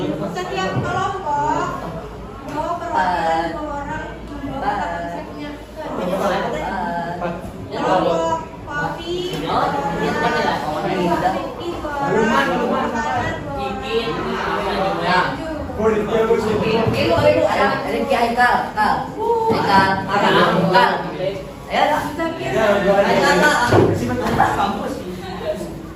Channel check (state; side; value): identical; both; correlation 1.00